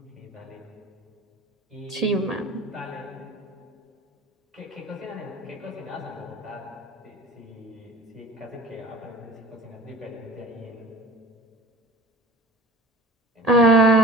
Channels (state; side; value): normal; both; correlation 0.39